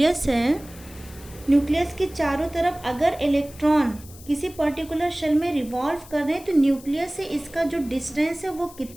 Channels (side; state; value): left; noise; hiss, 20 dB below the sound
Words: है, न्यूक्लियस के चारों तरफ अगर इलेक्ट्रॉन किसी पर्टिकुलर शेल में रिवॉल्व कर रहे हैं तो न्यूक्लियस से इसका जो डिस्टेंस है वो